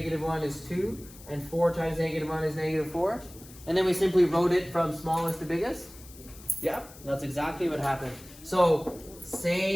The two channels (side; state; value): left; noise; hiss, 20 dB below the sound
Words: is 2, and 4 times -1 is -4. And then we simply wrote it from smallest to biggest? Yeah, that's exactly what happened. So